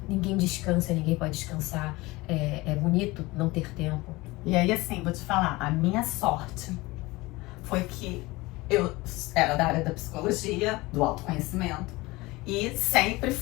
Ninguém descansa, ninguém pode descansar. É bonito não ter tempo. E aí, assim, vou te falar, a minha sorte foi que eu era da área da psicologia, do autoconhecimento, e sempre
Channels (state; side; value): quieter; right; 21.6 dB